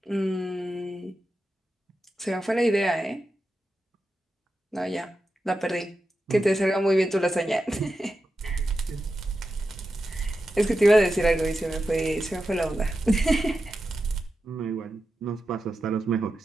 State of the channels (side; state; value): both; normal; correlation 0.90